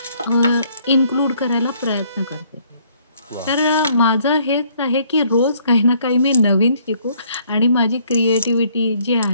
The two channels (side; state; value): both; inverted; correlation -0.64